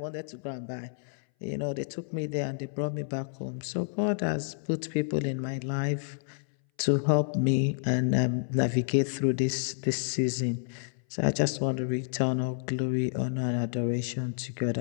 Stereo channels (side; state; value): right; silent; 58 dB below the other